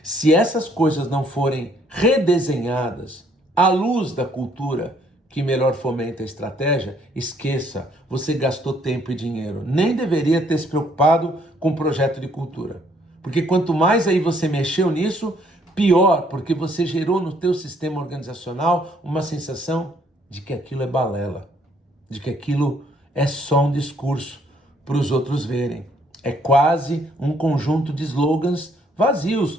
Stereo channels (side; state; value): both; normal; correlation 0.66